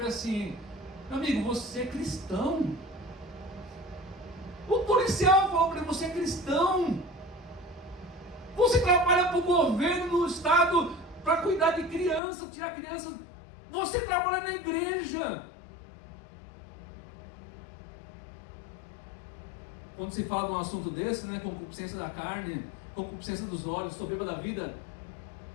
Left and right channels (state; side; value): drops out; right; at 12.2 s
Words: ele assim: meu amigo, você é cristão? O policial falou para ele: você é cristão? Você trabalha para o governo do estado para cuidar de criança, tirar criança. Você trabalha na igreja. Quando se fala de um assunto desse, concupiscência da carne, concupiscência dos olhos, soberba da vida,